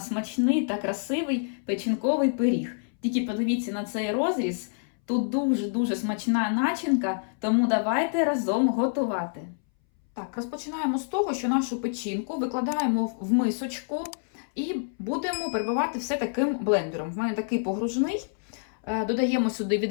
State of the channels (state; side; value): silent; right; 60 dB below the other